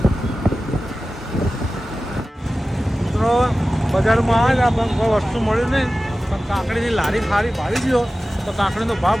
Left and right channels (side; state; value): both; normal; correlation 0.95